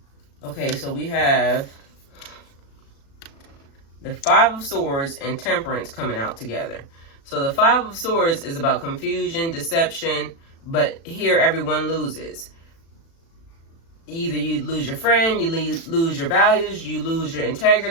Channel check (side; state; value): right; late; 36 ms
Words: Okay, so we have the Five of Swords and Temperance coming out together. So the Five of Swords is about confusion, deception, but here everyone loses. Either you lose your friend, you lose your values, you lose your